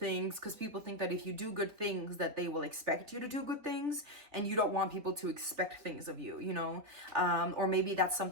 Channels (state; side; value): late; left; 3.6 ms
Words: because people think that if you do good things that they will expect you to do good things, and you don't want people to expect things of you, you know. Or maybe that's